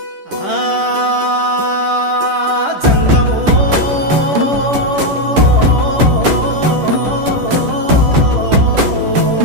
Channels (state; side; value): late; left; 10 ms